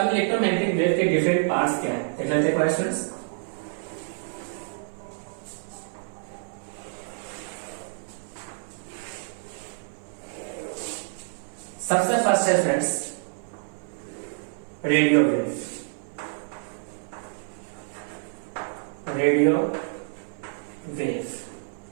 इलेक्ट्रोमैग्नेटिक वेव के डिफरेंट पार्ट्स क्या है देख लेते हैं स्टूडेंट्स। सबसे फर्स्ट है स्टूडेंट्स रेडियो वेव।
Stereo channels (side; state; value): left; silent; 56 dB below the other